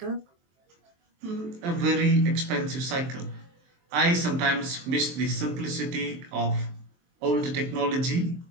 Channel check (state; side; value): late; left; 23 ms